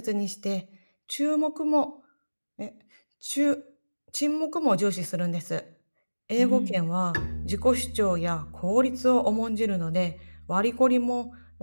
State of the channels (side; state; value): both; inverted; correlation -1.00